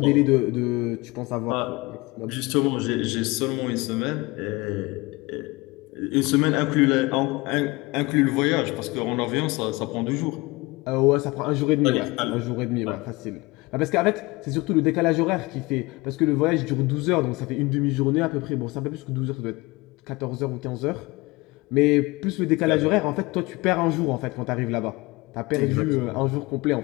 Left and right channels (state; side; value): quieter; right; 23.2 dB